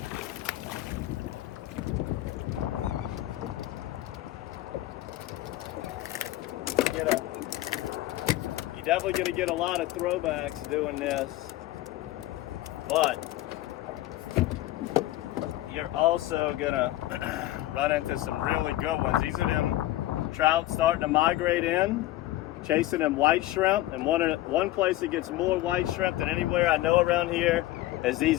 You're definitely going to get a lot of throwbacks doing this, but you're also going to run into some really good ones. These are them trout starting to migrate in, chasing them white shrimp, and one place that gets more white shrimp than anywhere I know around here is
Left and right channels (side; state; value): right; quieter; 15.8 dB